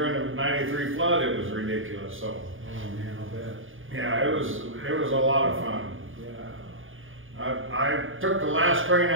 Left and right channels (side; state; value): left; late; 0.58 ms